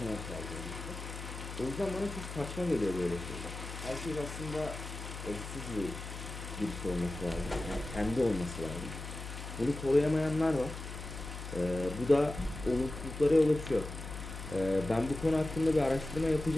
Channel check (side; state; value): left; noise; hum, 9 dB below the sound